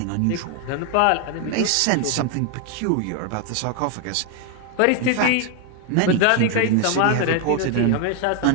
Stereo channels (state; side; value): different; both; correlation 0.01